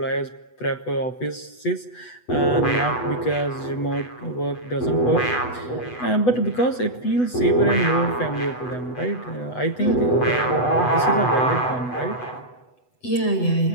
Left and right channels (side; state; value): right; late; 8.1 ms